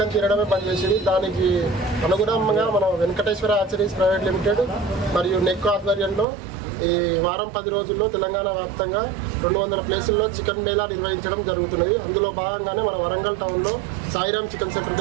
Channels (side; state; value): left; drops out; at 6.2 s